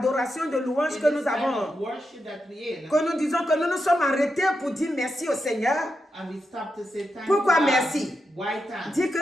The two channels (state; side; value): normal; both; correlation 0.87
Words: de louange que nous avons, que nous disons que nous nous sommes arrêtés pour dire merci au Seigneur. Pourquoi merci? Dis